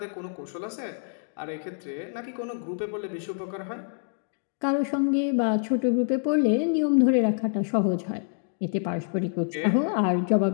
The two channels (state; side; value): silent; right; digital silence